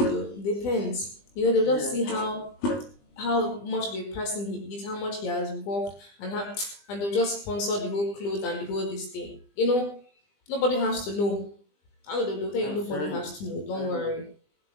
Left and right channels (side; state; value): right; late; 20 ms